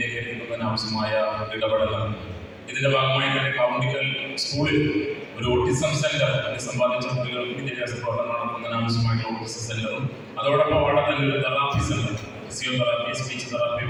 എത്തിക്കുന്നതിന് ആവശ്യമായ ഇടപെടലാണ്. ഇതിന്റെ ഭാഗമായി തന്നെ കൗണ്ടിക്കൽ സ്കൂളിൽ ഒരു ഓട്ടിസം സെന്റർ, സമ്പാദിച്ച കുട്ടികൾക്ക് വിദ്യാഭ്യാസ പ്രവർത്തനം നടത്തുന്നതിന് ആവശ്യമായിട്ടുള്ള ഓട്ടിസം സെന്ററും അതോടൊപ്പം അവിടെ തന്നെ ഒരു therapy centre, physiotherapy, speech therapy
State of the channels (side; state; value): both; identical; correlation 1.00